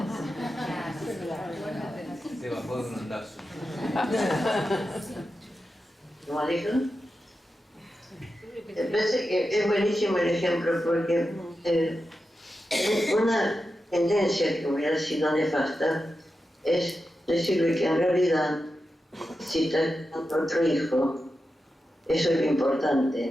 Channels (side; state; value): both; normal; correlation 0.90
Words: Se bajó de un ondazo. ¿Cómo dijo? Me parece que es buenísimo el ejemplo porque una tendencia que hubiera sido nefasta es decirle que en realidad si está con otro hijo, eso es lo